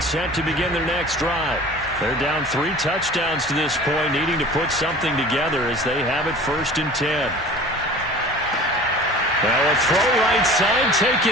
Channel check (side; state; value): both; normal; correlation 0.42